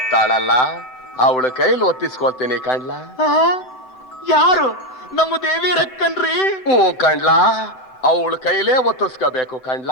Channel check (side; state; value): right; late; 7.8 ms